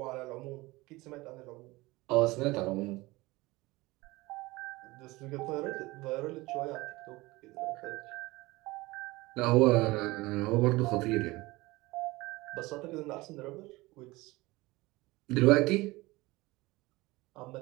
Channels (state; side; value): quieter; left; 21.2 dB